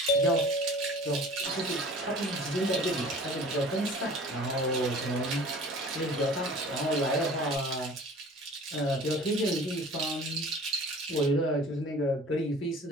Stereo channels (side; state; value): both; normal; correlation 0.45